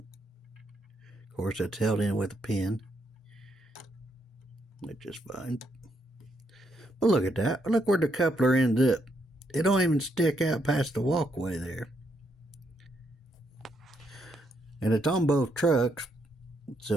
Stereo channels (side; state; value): both; normal; correlation 0.77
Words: course, that's held in with a pin. That's just fine. But look at that. Look where the coupler ends up. It don't even stick out past the walkway there. And it's on both trucks,